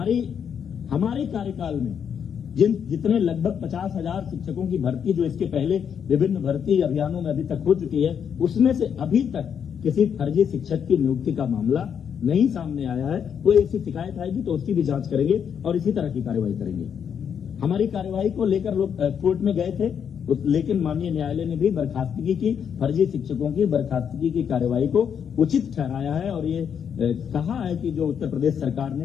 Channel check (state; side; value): quieter; right; 7.8 dB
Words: हमारे कार्यकाल में जितने लगभग 50,000 शिक्षकों की भर्ती जो इसके पहले विभिन्न भर्ती अभियानों में अभी तक हो चुकी है, उसमें से अभी तक किसी फर्जी शिक्षक की नियुक्ति का मामला नहीं सामने आया है। कोई ऐसी शिकायत आएगी तो उसकी भी जांच करेंगे और इसी तरह की कार्रवाई करेंगे। हमारी कार्रवाई को लेकर लोग कोर्ट में गए थे, लेकिन माननीय न्यायालय ने भी बर्खास्तगी की, फर्जी शिक्षकों की बर्खास्तगी की कार्रवाई को उचित ठहराया है और ये कहा है कि जो उत्तर प्रदेश सरकार